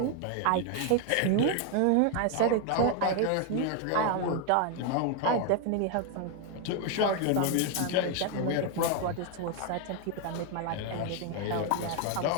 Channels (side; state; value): both; different; correlation 0.01